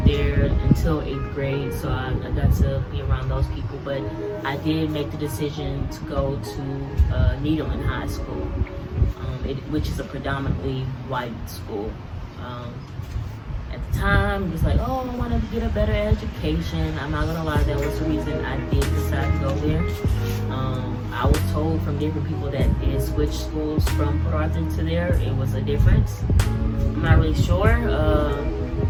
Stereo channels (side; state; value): both; identical; correlation 1.00